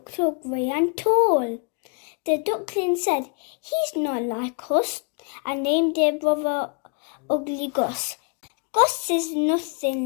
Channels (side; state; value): right; quieter; 37.5 dB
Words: so grey and tall. The duckling said, "He's not like us," and named their brother Ugly Gus. Gus is nothing